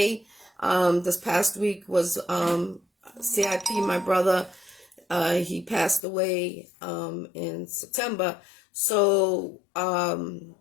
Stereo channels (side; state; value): right; drops out; at 6.1 s